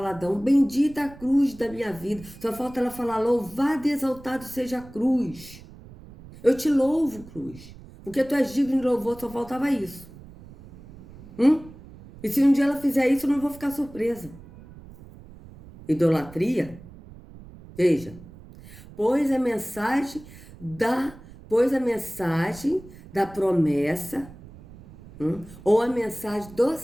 bendita a cruz da minha vida. Só falta ela falar, louvado e exaltado seja a cruz. Eu te louvo, cruz. Porque tu és digno de louvor, só faltava isso. E se um dia ela fizer isso, eu não vou ficar surpresa. Idolatria? Veja. Pois a mensagem da promessa, ou a mensagem do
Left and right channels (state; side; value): noise; right; rumble, 19 dB below the sound